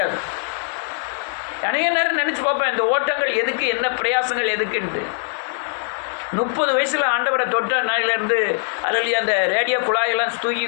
அநேக நேரம் நினச்சி பார்ப்பேன், இந்த ஓட்டங்கள் எதுக்கு, என்ன பிரயாசங்கள் எதுக்குன்ட்டு. 30 வயசில் ஆண்டவரை தொட்ட நாளிலேருந்து அல்லையா அந்த ரேடியோ குழாயெல்லாம் தூக்கி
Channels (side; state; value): right; silent; 65 dB below the other